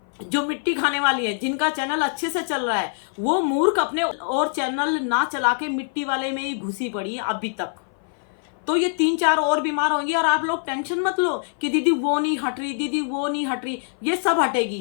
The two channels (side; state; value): right; silent; 58 dB below the other